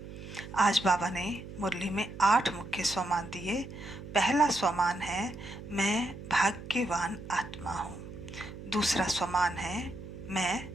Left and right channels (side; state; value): right; noise; hum, 12 dB below the sound